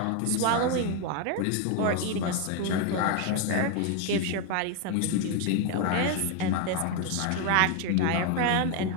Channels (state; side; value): different; both; correlation 0.01